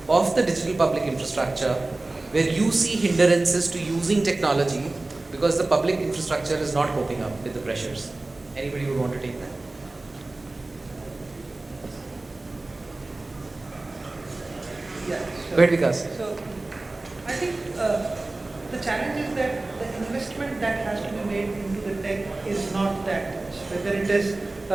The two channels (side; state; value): left; quieter; 3.0 dB